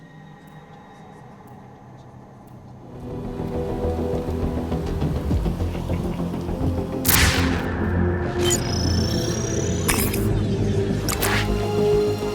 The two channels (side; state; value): both; identical; correlation 1.00